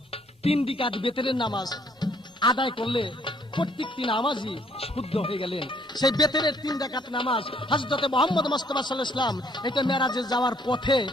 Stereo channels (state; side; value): normal; both; correlation 0.65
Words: 3 রাকাত বেতেরের নামাজ আদায় করলে প্রত্যেকটি নামাজই শুদ্ধ হয়ে গেলেন। সেই বেতেরের 3 রাকাত নামাজ হযরত মুহাম্মদ মুস্তাফা সাল্লাল্লাহু আলাইহি ওয়াসাল্লাম এটা মেরাজে যাওয়ার পথে